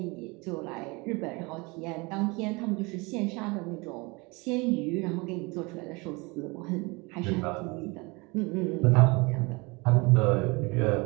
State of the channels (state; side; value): quieter; left; 26.5 dB